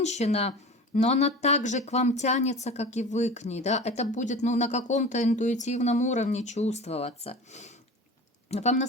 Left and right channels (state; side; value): normal; both; correlation 0.36